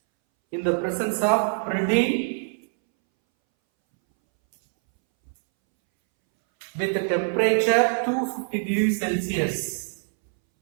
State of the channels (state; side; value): silent; left; 62 dB below the other